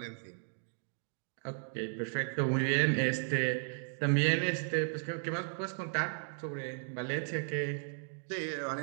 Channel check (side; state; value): left; silent; 54 dB below the other